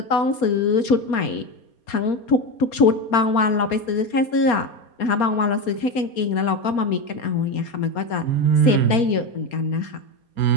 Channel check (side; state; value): right; late; 4.3 ms